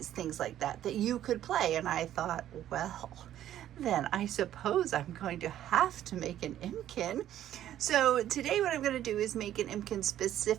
things like that you could play. And I thought, well, then I suppose I'm going to have to make an Impkin. So today what I'm going to do is make an Impkin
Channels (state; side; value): quieter; left; 11.9 dB